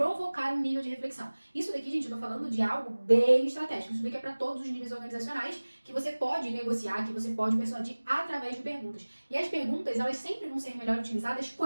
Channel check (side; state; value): both; inverted; correlation -1.00